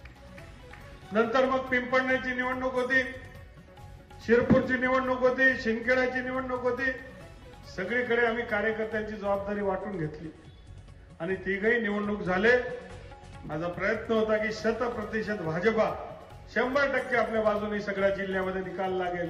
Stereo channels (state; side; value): identical; both; correlation 1.00